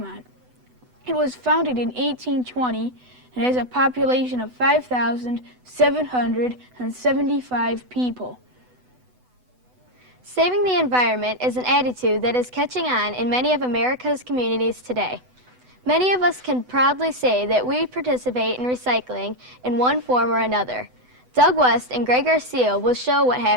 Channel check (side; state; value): left; late; 8.0 ms